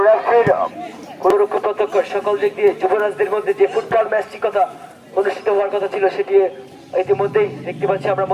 রেফারির কোনরকম প্রত্যক্ষ সকল দিক দিয়ে যুবরাজদের মধ্যে যে ফুটবল ম্যাচটি কথা অনুষ্ঠিত হওয়ার কথা ছিল সেটি ইতিমধ্যেই দেখতে পাচ্ছি আমরা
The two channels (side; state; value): both; identical; correlation 1.00